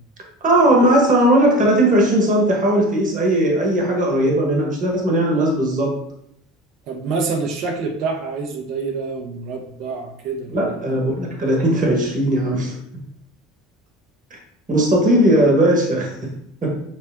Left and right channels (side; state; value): both; normal; correlation 0.36